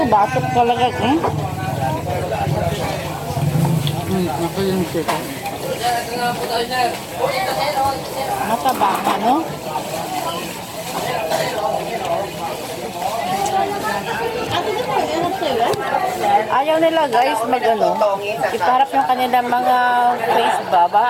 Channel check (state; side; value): identical; both; correlation 1.00